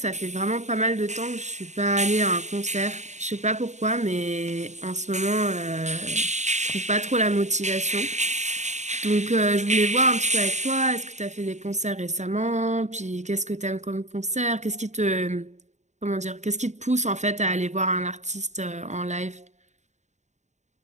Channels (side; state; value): left; late; 0.34 ms